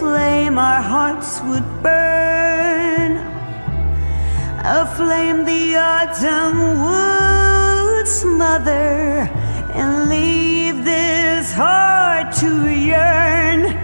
our hearts would burn. A flame the autumn would smother and leave this heart to yearn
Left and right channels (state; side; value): inverted; both; correlation -1.00